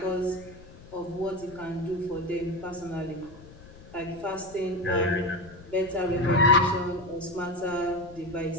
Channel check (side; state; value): left; noise; rumble, 20 dB below the sound